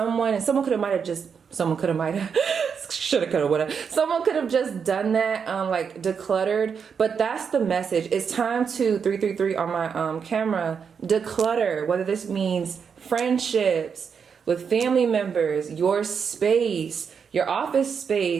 and someone could have shoulda, coulda, woulda. Someone could have just done that, like decluttered. But that's the message. It's time to 333 on my camera, declutter. Whether this means friendships with family members, your space, your office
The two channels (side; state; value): left; quieter; 6.5 dB